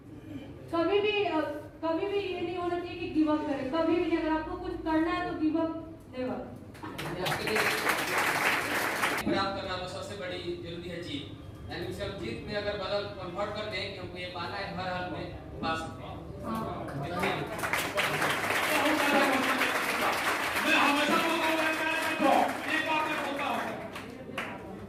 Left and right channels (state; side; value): identical; both; correlation 1.00